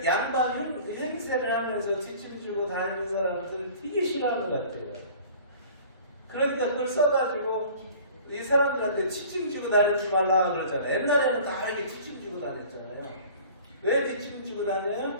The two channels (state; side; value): inverted; both; correlation -0.46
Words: 양반 행세를 하면서 뒷짐 지고 다니는 사람들 되게 싫어하는 것 같아요. 그러니까 그걸 써가지고 이 사람들한테 뒷짐 지고 다니지 말라 그러잖아요. 옛날에는 다 이렇게 뒷짐 지고 다녔잖아요. 왜 뒷짐지고